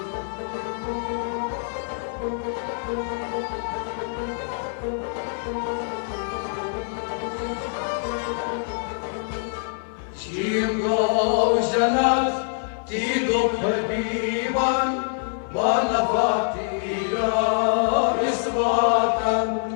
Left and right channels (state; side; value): silent; right; 55 dB below the other